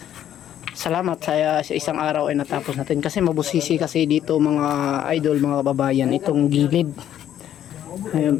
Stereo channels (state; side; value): quieter; right; 10.9 dB